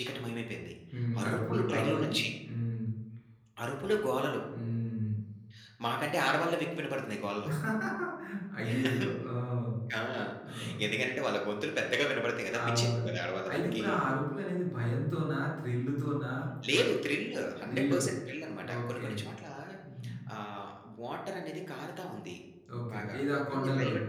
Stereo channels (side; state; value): both; identical; correlation 1.00